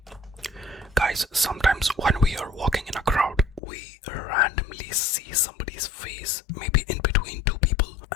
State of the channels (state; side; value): drops out; right; at 3.6 s